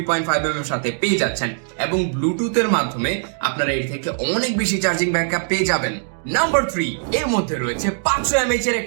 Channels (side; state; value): left; silent; digital silence